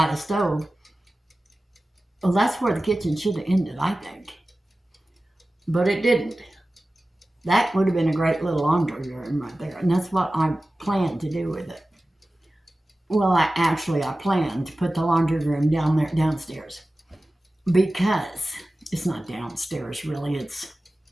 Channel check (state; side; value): normal; both; correlation 0.96